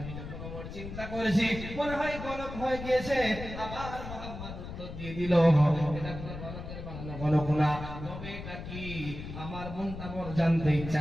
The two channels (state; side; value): noise; left; rumble, 9 dB below the sound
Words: যখন ওর চিন্তা করেছি মনে হয় গণক হয়ে গিয়েছে, আবার মোহাম্মদ উত্তর দিয়ে দিল এটা কোনো গণকের বানানো গণক না, তবে এটা কি আমার মনটা বড় জানতে ইচ্ছা